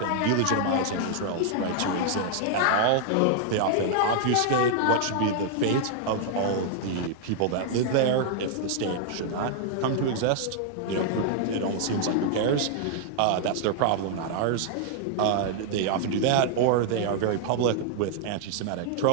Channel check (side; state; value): both; different; correlation 0.00